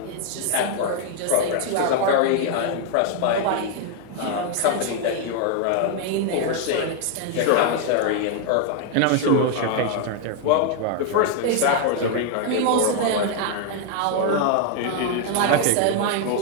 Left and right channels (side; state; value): both; different; correlation 0.00